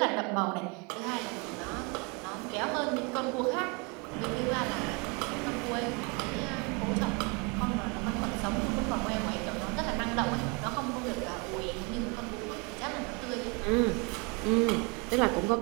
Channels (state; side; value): quieter; left; 31.1 dB